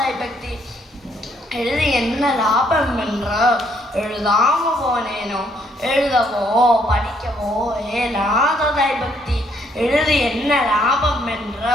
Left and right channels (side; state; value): both; normal; correlation 0.69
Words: பக்தி. எழுதி என்ன லாபம் என்று எழுதாம போனேனோ. எழுதவோ படிக்கவோ ஏலாததாய் பக்தி. எழுதி என்ன லாபம் என்று